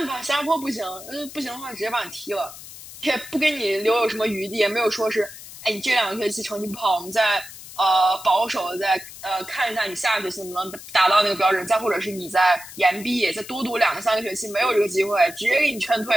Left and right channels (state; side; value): noise; left; hiss, 15 dB below the sound